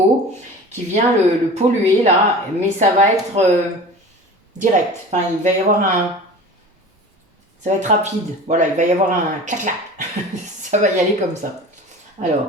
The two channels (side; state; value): both; normal; correlation 0.38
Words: qui vient le polluer là, mais ça va être direct. Enfin, il va y avoir ça va être rapide. Voilà, il va y avoir un clac-clac. Ça va y aller comme ça.